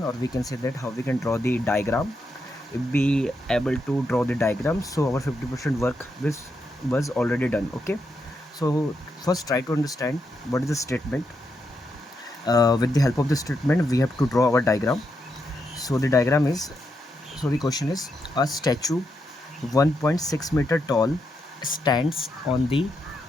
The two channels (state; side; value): normal; both; correlation 0.82